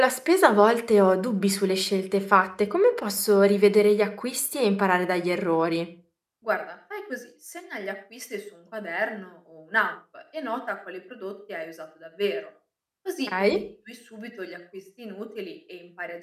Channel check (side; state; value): both; identical; correlation 1.00